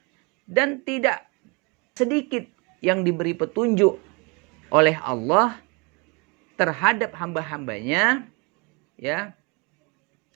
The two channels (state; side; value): quieter; left; 29.7 dB